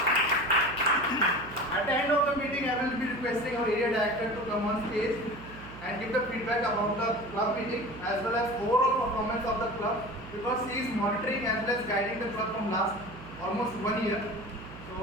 At the end of the meeting, I will be requesting our area director to come on stage and give the feedback about the club meeting as well as overall performance of the club, because he is monitoring as well as guiding the club from last almost 1 year.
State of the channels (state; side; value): noise; right; hum, 16 dB below the sound